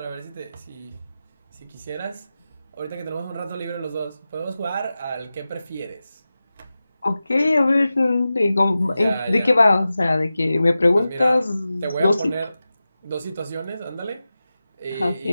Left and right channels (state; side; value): inverted; both; correlation -0.94